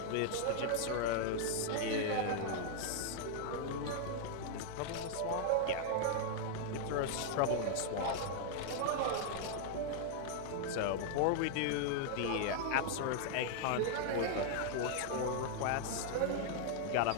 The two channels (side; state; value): both; different; correlation -0.01